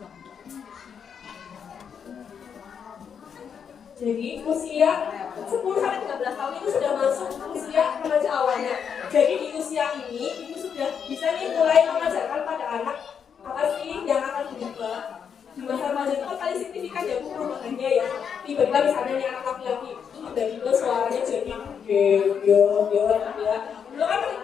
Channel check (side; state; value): right; quieter; 7.3 dB